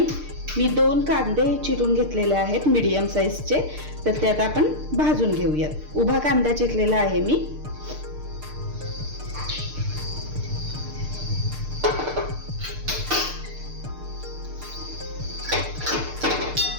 मी 2 कांदे चिरून घेतलेले आहेत मीडियम साईजचे। तर त्यात आपण भाजून घेऊयात। उभा कांदा चिरलेला आहे मी।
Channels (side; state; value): left; late; 6.6 ms